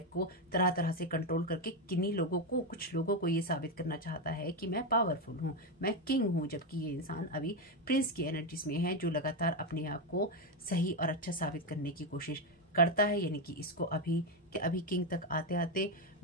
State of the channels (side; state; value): both; normal; correlation 0.08